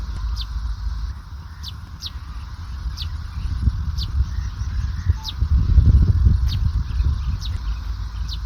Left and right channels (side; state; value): both; identical; correlation 1.00